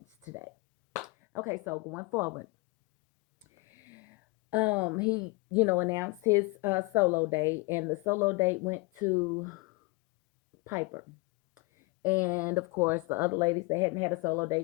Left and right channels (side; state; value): right; quieter; 25.1 dB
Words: today. Okay, so going forward, he announced his solo date, and the solo date went to Piper. And of course, the other ladies that hadn't had a solo